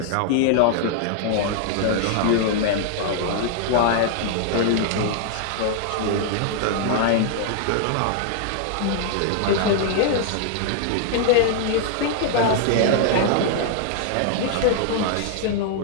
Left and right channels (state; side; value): different; both; correlation -0.01